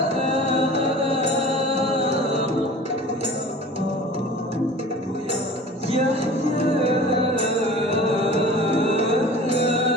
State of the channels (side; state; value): both; normal; correlation 0.40